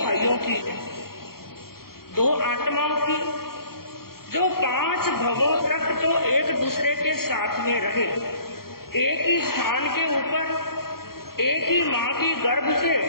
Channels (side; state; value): right; late; 0.93 ms